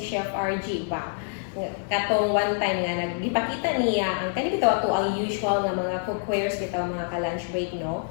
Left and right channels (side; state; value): right; silent; 57 dB below the other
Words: Chef RG ba. Katong one time nga nagipakita niya ang kani bitaw ato ang usual nga mga cookwares bitaw mga ka-lunch break no.